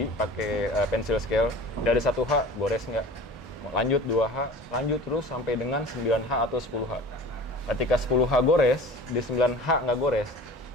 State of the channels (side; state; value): both; normal; correlation 0.41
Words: pakai pensil scale. Dari 1H gores nggak? Lanjut 2H, lanjut terus sampai dengan 9H atau 10H. Ketika 10H gores, di 9H nggak gores,